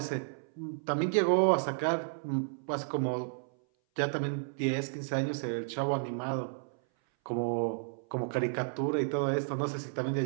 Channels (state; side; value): silent; left; 56 dB below the other